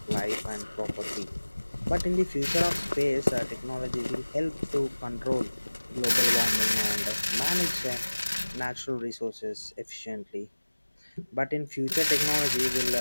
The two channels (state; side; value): inverted; both; correlation -1.00